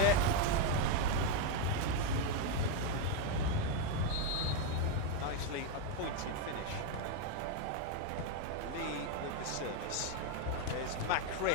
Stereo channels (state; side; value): different; both; correlation 0.02